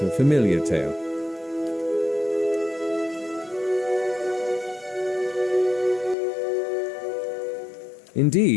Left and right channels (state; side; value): drops out; right; at 6.2 s